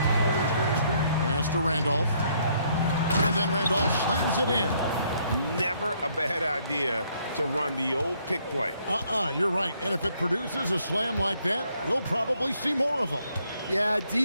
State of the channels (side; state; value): both; inverted; correlation -0.68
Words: Pass to Randolph. And then Randolph slams it in. Never a bad idea to run the old pick play. You're right. And if it produces a slam like that, we'll probably see more of them. Yeah,